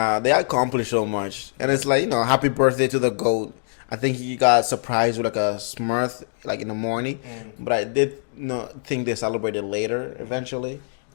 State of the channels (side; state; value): right; silent; digital silence